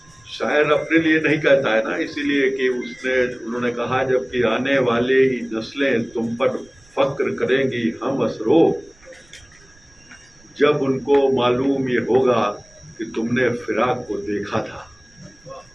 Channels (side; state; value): right; noise; rumble, 29 dB below the sound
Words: अपने लिए नहीं कहता है ना, इसीलिए कि उन्होंने कहा जबकि आने वाले ही नस्लें तुम पर फक्र करेंगी हम असरो, जब उनको मालूम ये होगा कि तुमने फिराक को देखा था।